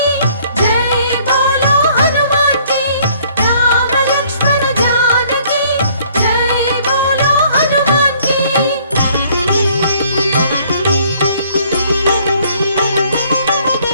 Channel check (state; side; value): inverted; both; correlation -0.61